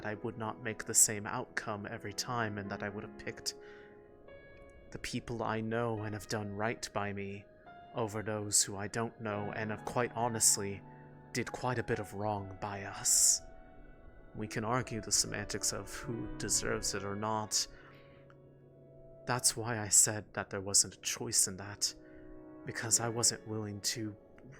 I would not make the same outcome every time, and that I would have picked the people I know and have done right by me over those who I don't know and have quite honestly did quite a bit of wrong by us. We can argue the semantics of who deserves it or not. That's why I said that there wasn't a choice in that, because I wasn't willing to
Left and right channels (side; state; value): both; identical; correlation 1.00